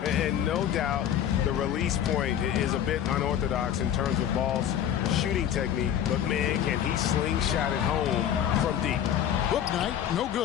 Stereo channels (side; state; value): right; quieter; 10.0 dB